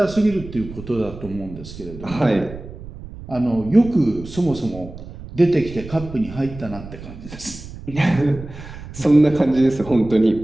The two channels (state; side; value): noise; right; rumble, 14 dB below the sound